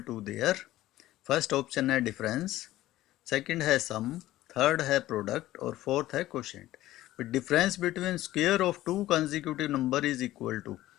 to there. First option है डिफरेंस, सेकंड है सम, थर्ड है प्रोडक्ट और फोर्थ है quotient. Difference between square of two consecutive number is equal to,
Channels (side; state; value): right; quieter; 15.4 dB